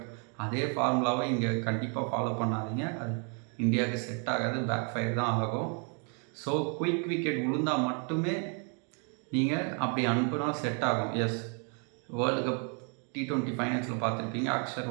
அதே ஃபார்முலாவை இங்கே கண்டிப்பாக ஃபாலோ பண்ணாதீங்க. அது இந்தியாவுக்கு செட் ஆகாது, பேக் ஃபயர் தான் ஆகும். ஸோ குயிக் விக்கெட் விழுந்தால் மட்டுமே நீங்கள் அப்படி அனுப்புனா செட் ஆகும். எஸ், வேர்ல்டு கப் T20 ஃபைனல்ஸில் பார்த்துருப்பீங்க,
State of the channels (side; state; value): left; quieter; 39.0 dB